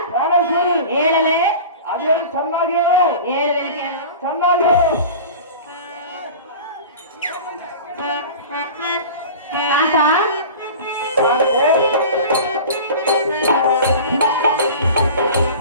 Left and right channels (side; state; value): both; inverted; correlation -0.37